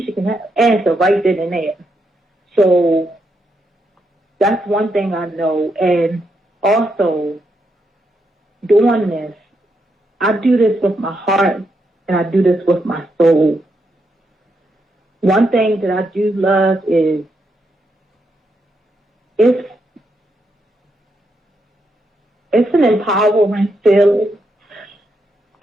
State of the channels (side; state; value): both; normal; correlation 0.81